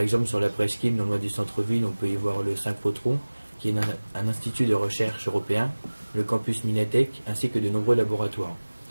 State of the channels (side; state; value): both; inverted; correlation -1.00